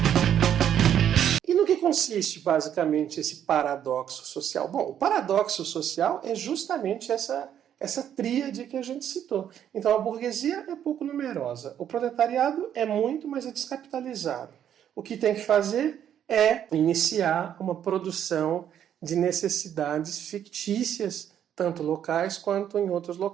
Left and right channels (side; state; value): left; quieter; 9.8 dB